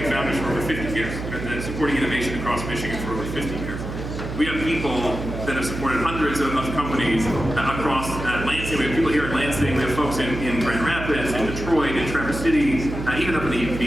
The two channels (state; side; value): noise; right; hum, 7 dB below the sound